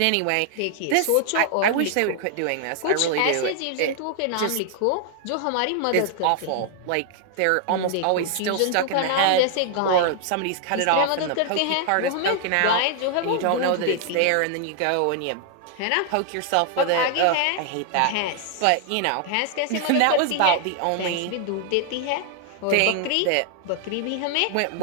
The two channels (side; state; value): both; different; correlation 0.00